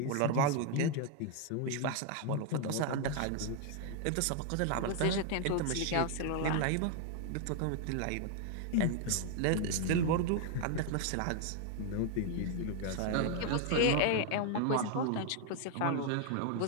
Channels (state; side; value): different; both; correlation 0.00